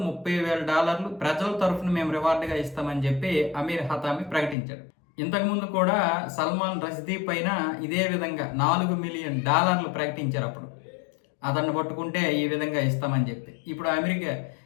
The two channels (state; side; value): drops out; right; at 4.5 s